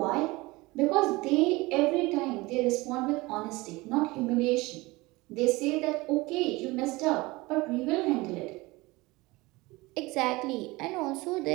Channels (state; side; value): quieter; left; 22.0 dB